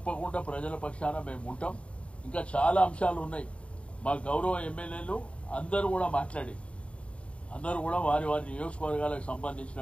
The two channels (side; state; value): right; late; 0.061 ms